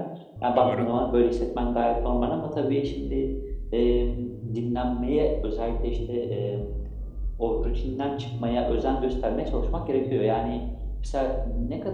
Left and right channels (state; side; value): identical; both; correlation 1.00